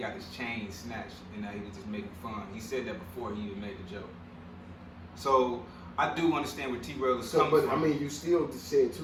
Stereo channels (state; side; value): identical; both; correlation 1.00